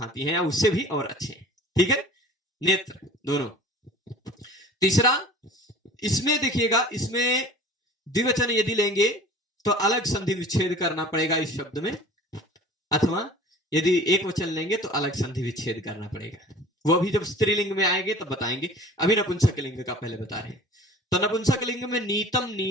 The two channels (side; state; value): both; normal; correlation 0.44